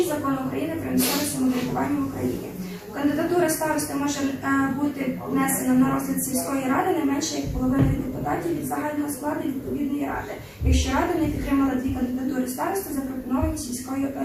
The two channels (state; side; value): identical; both; correlation 1.00